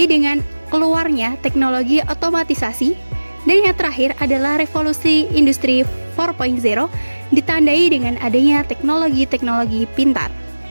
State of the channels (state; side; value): inverted; both; correlation -1.00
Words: dengan keluarnya teknologi otomatisasi, dan yang terakhir adalah revolusi industri 4.0 ditandai dengan adanya teknologi-teknologi pintar.